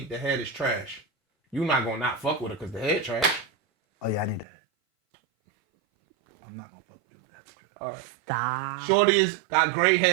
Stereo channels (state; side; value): drops out; left; at 4.5 s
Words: the head is trash. You're not going to not fuck with her because the head trash. Oh yeah, I need the head. I'm not gonna fuck with you with the head. All right. Stop. Shorty is got great